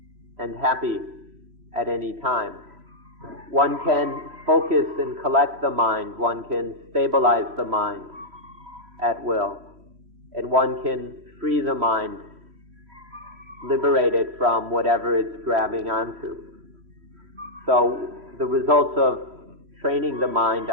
and happy at any time. One can focus and collect the mind. One can stabilize the mind at will. And one can free the mind, liberate it from whatever it's grabbing onto. So the results of training the mind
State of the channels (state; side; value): late; left; 3.1 ms